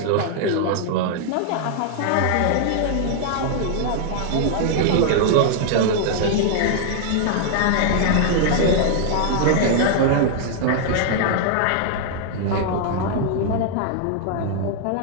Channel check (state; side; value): different; both; correlation -0.01